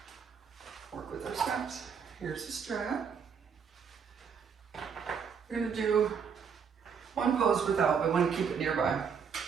work with our straps. Here's the strap. We're going to do one pose without, but I want to keep it nearby.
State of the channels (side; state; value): left; quieter; 6.6 dB